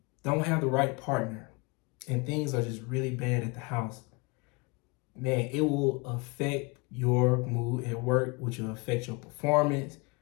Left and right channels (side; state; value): right; quieter; 28.6 dB